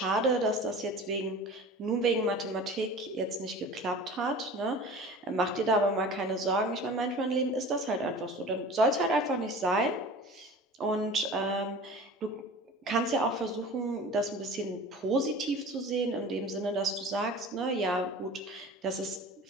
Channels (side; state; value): both; normal; correlation 0.39